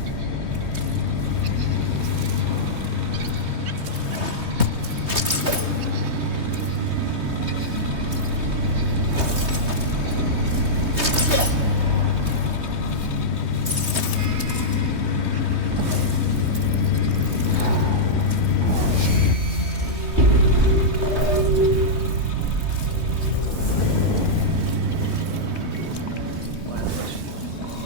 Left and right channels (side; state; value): left; late; 3.2 ms